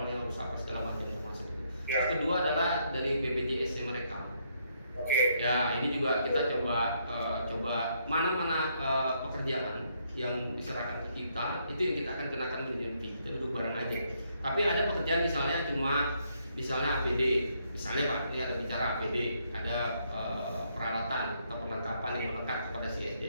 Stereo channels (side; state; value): both; inverted; correlation -0.74